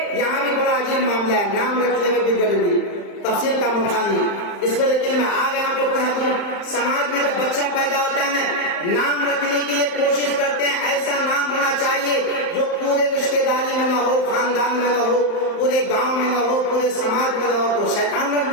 یہاں بھی بڑا عجیب معاملہ ہے، نام رکھنے میں بھی ضروری، تفصیل کا موقع نہیں، اس میں لیکن میں آگے آپ کو کہہ دوں، سماج میں جب بچہ پیدا ہوتا ہے نام رکھنے کے لیے کوشش کرتے ہیں ایسا نام ہونا چاہیے جو پورے رشتے داری میں نہ ہو، خاندان میں نہ ہو، پورے گاؤں میں نہ ہو، پورے سماج میں نہ ہو، تو شیطان رکھ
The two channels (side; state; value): right; late; 35 ms